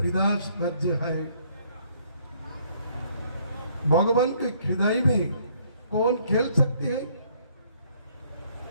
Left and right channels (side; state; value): both; inverted; correlation -0.65